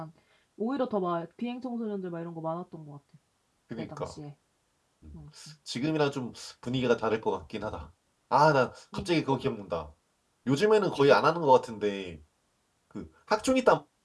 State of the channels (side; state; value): both; identical; correlation 1.00